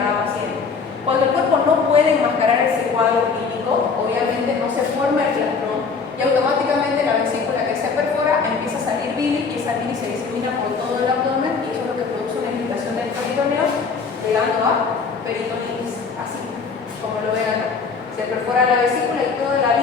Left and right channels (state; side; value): quieter; right; 5.2 dB